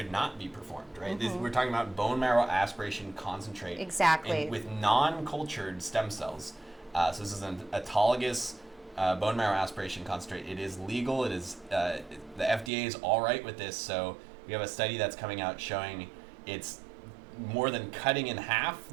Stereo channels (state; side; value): drops out; left; at 12.7 s